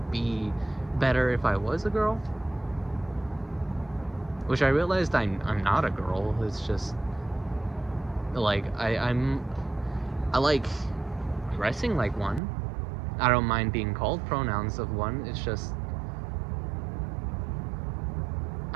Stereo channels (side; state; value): left; drops out; at 12.4 s